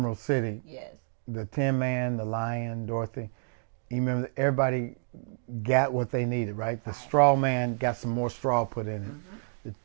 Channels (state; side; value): silent; left; digital silence